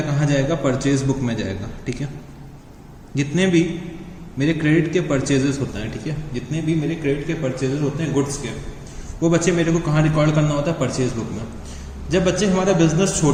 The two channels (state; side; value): identical; both; correlation 1.00